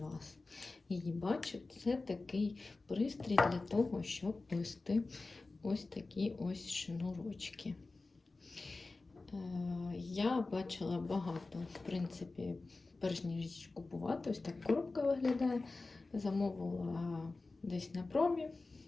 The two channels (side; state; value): right; quieter; 3.5 dB